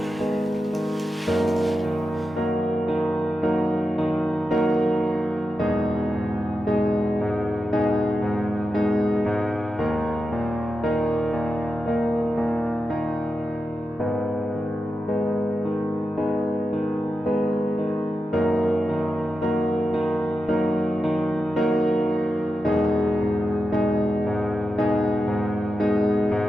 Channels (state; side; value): normal; both; correlation 0.90